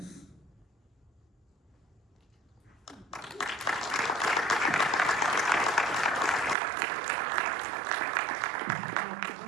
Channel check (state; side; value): drops out; left; at 6.6 s